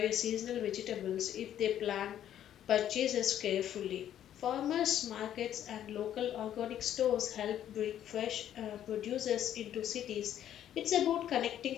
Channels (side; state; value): right; quieter; 10.9 dB